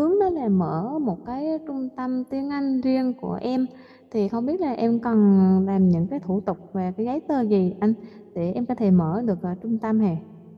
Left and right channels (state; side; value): identical; both; correlation 1.00